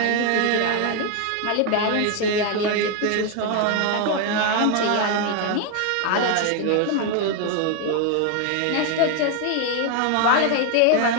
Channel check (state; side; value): different; both; correlation 0.01